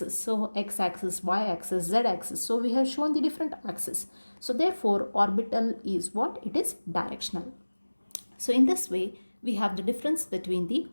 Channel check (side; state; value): both; inverted; correlation -1.00